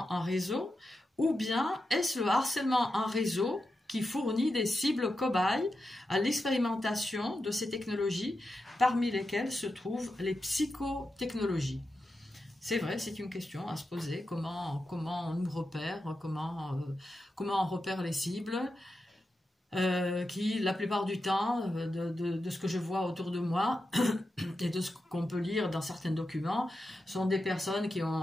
en réseau ou bien est-ce le harcèlement en réseau qui fournit des cibles cobayes à l'expérimentation de ces technologies, parmi lesquelles se trouvent les psychotechnologies? C'est vrai, c'est une question à se poser. Comment on nous repère, comment on repère les cibles qui, la plupart du temps, de ce que je vois autour de moi et de ce qu'on peut lire dans certains documents, sont des personnes qui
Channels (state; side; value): normal; both; correlation 0.89